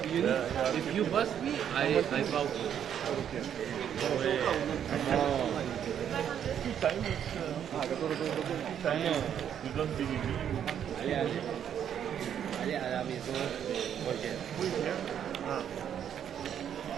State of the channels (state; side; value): quieter; left; 9.2 dB